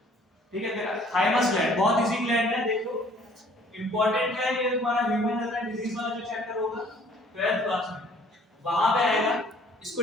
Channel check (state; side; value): normal; both; correlation 0.57